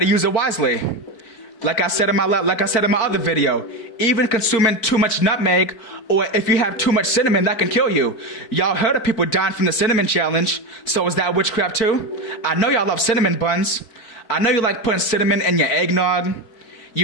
use it wisely. Like I said in my other video, even consuming too much nutmeg, or if you have too much cinnamon, that can kill you. Y'all heard of people dying from the cinnamon challenge. So is that witchcraft too? I know y'all love cinnamon buns. I know you like putting cinnamon in your eggnog.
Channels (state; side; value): late; right; 4.4 ms